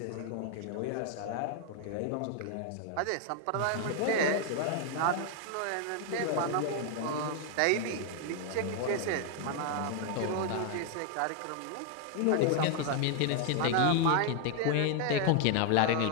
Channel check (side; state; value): both; different; correlation 0.00